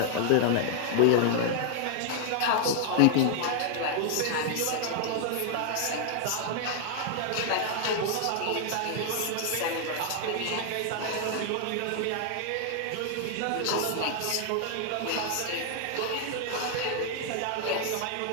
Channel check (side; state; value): both; different; correlation 0.00